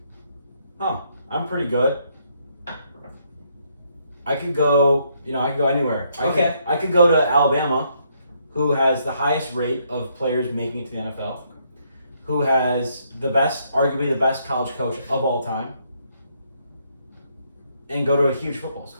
I'm pretty good. I could go anywhere. I could go to Alabama, who has the highest rate of players making it to the NFL, who has arguably the best college coach of all time, and go to a huge football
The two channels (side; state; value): both; inverted; correlation -0.72